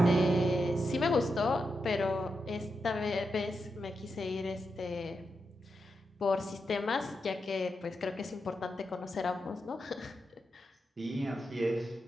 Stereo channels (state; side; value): normal; both; correlation 0.86